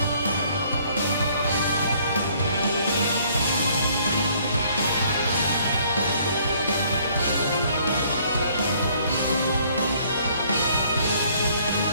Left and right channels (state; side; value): inverted; both; correlation -0.61